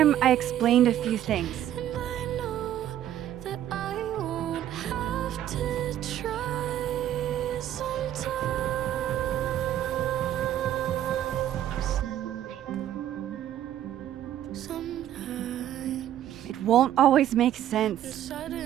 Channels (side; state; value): left; quieter; 11.6 dB